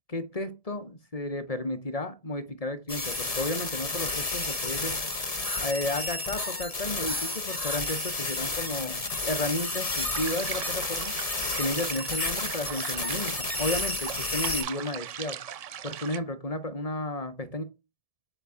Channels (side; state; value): right; late; 1.7 ms